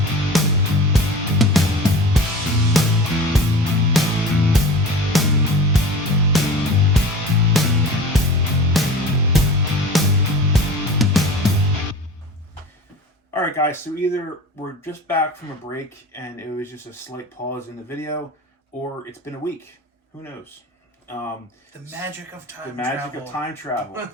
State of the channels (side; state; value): both; normal; correlation 0.36